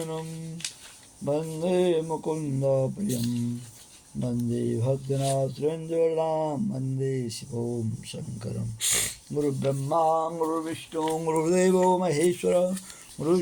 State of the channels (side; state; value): both; identical; correlation 1.00